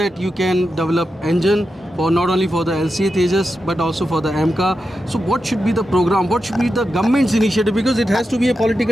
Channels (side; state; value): both; normal; correlation 0.89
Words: you can develop engine for not only for the LCA Tejas but also for the AMCA. So what should be the program? What should be the government's initiative? Because it has to be a